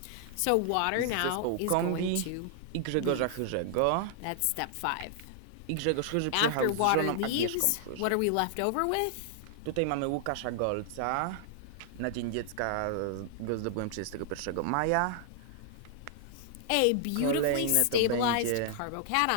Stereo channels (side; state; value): both; different; correlation -0.01